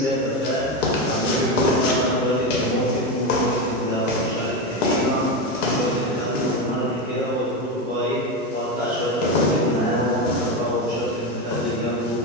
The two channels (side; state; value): both; normal; correlation 0.16